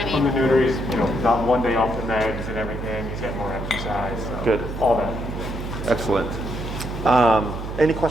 From mean? the neuter, he's not one day off the meds and everything. He's getting more exercise. So Good. All that. Excellent. Any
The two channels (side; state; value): right; noise; hum, 7 dB below the sound